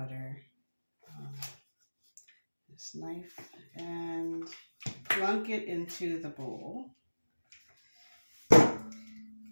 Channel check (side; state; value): both; inverted; correlation -1.00